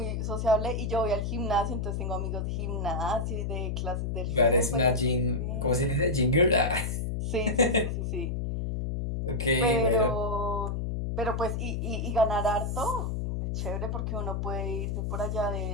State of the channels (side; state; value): left; noise; hum, 1 dB below the sound